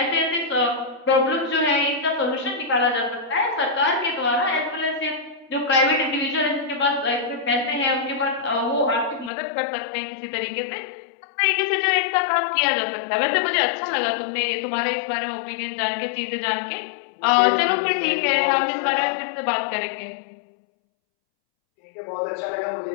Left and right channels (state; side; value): drops out; right; at 9.3 s